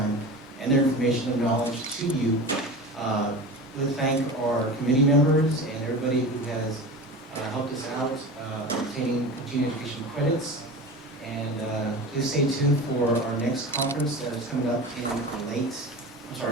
and their information and knowledge to you. We'll thank our committee members and everybody who has helped us out obtaining continuing education credits. And please stay tuned for our next conference that is coming up in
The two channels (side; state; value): both; normal; correlation 0.31